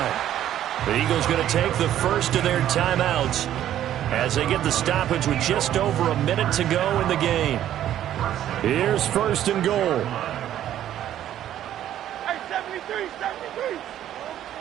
The Eagles going to take the first of their timeouts as they get the stoppage with just over a minute to go in the game. Here's 1st and goal.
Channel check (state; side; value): quieter; left; 11.6 dB